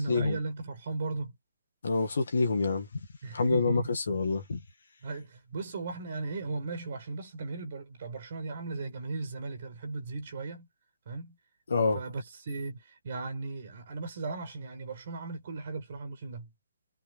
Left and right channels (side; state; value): both; inverted; correlation -0.81